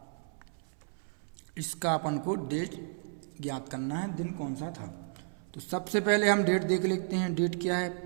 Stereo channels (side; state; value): left; silent; 56 dB below the other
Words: इसका अपन को डेट ज्ञात करना है, दिन कौन सा था। तो सबसे पहले हम डेट देख लेते हैं। डेट क्या है?